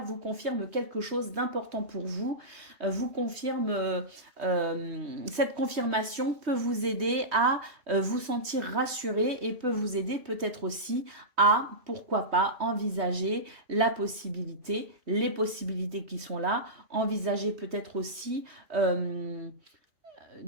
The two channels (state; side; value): late; left; 3.2 ms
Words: vous confirme quelque chose d'important pour vous. Vous confirme, cette confirmation peut vous aider à vous sentir rassuré et peut vous aider peut-être aussi à, pourquoi pas, envisager la possibilité, les possibilités qui sont là. Envisager peut-être aussi